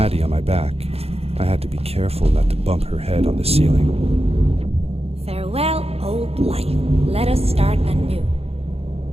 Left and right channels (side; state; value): left; late; 0.29 ms